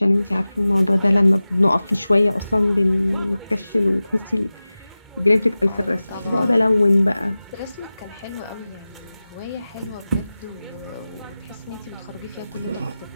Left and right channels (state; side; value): inverted; both; correlation -0.96